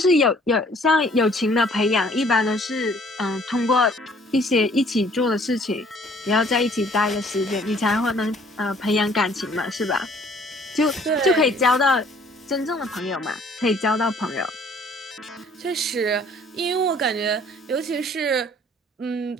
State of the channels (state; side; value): normal; both; correlation 0.57